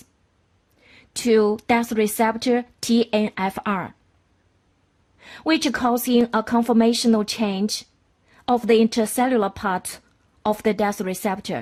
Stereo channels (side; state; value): both; identical; correlation 1.00